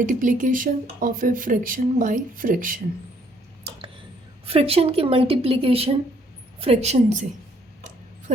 of a fraction by fraction. Fraction की मल्टीप्लिकेशन फ्रैक्शन से।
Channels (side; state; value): both; normal; correlation 0.66